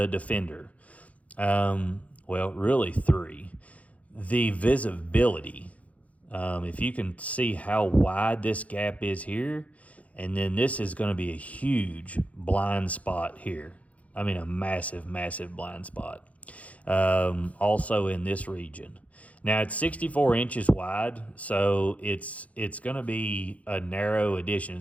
Defender. Well, really three. The visibility. If you can see how wide this gap is here, and then this is going to be a huge blind spot here. I mean, a massive, massive blind spot. Also in this region. Now, it's 64 inches wide, so it's going to be a narrow addition.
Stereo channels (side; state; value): right; late; 0.067 ms